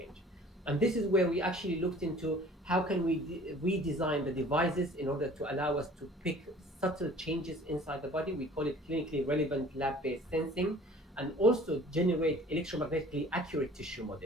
And this is where we actually looked into how can we redesign the devices in order to allow us to pick subtle changes inside the body. We call it clinically relevant lab-based sensing, and also generate electromagnetically accurate tissue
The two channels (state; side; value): normal; both; correlation 0.49